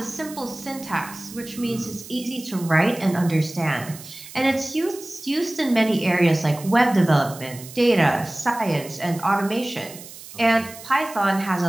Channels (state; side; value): noise; right; hiss, 16 dB below the sound